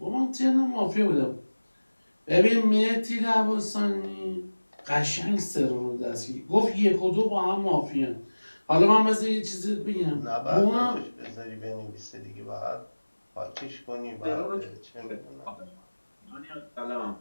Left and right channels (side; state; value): both; inverted; correlation -1.00